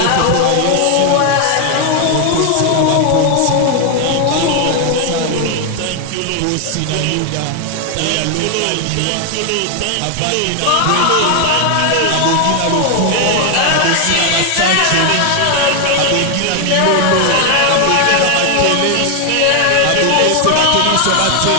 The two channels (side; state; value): both; different; correlation 0.00